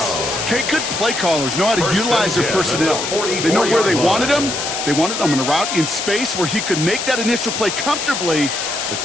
Okay, good play callers know how to utilize their personnel. They know where they wanted them. They wanted them on a route in space where he could make that initial play comfortably, but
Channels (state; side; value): noise; left; hiss, 4 dB below the sound